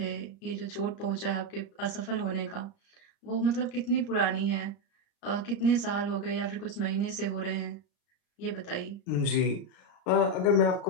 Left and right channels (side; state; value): right; late; 34 ms